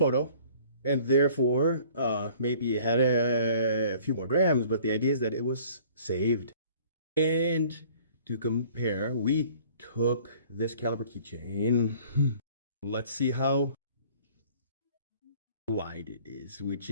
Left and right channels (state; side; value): inverted; both; correlation -0.53